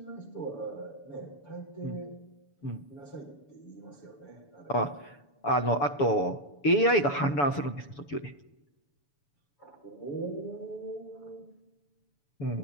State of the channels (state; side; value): late; right; 7.0 ms